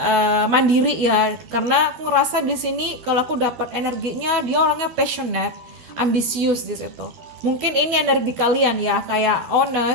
mandiri ya. Karena aku ngerasa di sini kalau aku dapat energinya, dia orangnya passionate, ambisius di situ. Mungkin ini energi kalian ya, kayak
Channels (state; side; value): late; left; 12 ms